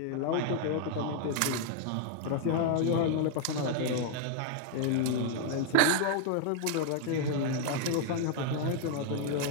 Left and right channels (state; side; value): different; both; correlation 0.00